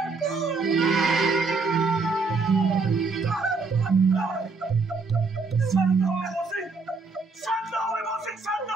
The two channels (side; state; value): left; quieter; 4.2 dB